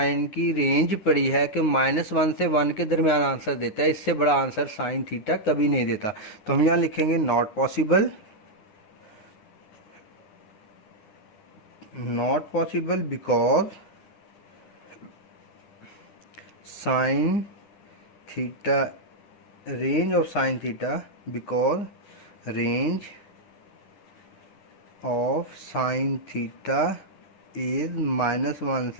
की रेंज पढ़ी है कि -1 से 1 के दरमियान आंसर देता है, इससे बड़ा आंसर साइन थीटा कभी नहीं देता। तो हम यहाँ लिखेंगे not possible, not possible because sine theta, range of sine theta, because range of sine theta is -1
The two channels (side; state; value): right; late; 9.6 ms